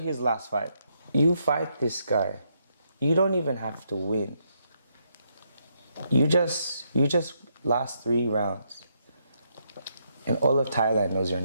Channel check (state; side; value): inverted; both; correlation -0.77